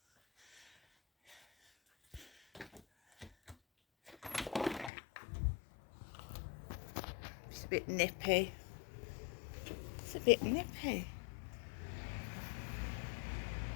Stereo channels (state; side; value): drops out; right; at 4.9 s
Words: It's a bit nippy. It's a bit nippy.